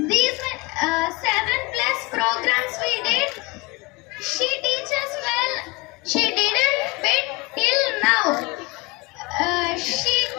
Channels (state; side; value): quieter; right; 25.1 dB